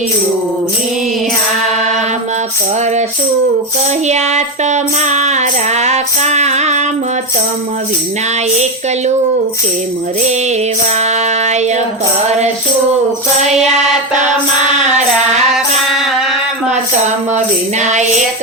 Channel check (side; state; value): both; normal; correlation 0.13